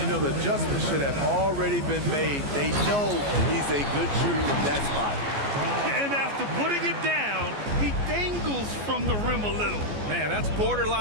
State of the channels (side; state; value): left; late; 14 ms